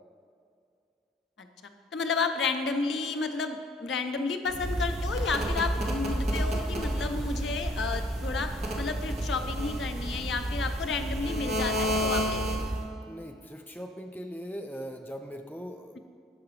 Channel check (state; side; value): normal; both; correlation 0.59